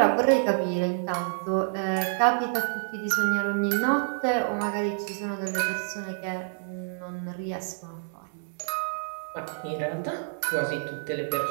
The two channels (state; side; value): silent; left; digital silence